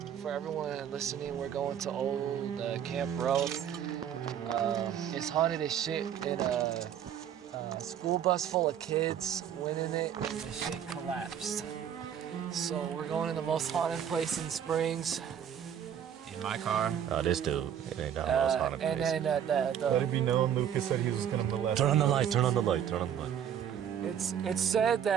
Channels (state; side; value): quieter; left; 9.2 dB